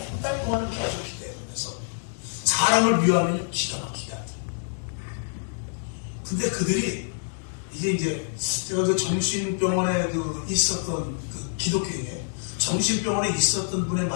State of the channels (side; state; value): right; silent; digital silence